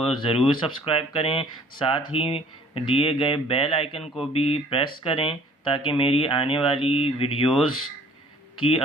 ज़रूर सब्सक्राइब करें, साथ ही दिए गए बेल आइकन को भी प्रेस करें ताकि मेरी आने वाली वीडियोस की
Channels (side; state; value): both; normal; correlation 0.54